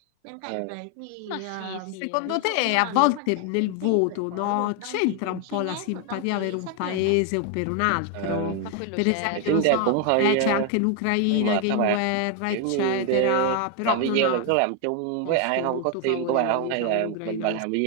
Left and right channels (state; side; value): different; both; correlation 0.01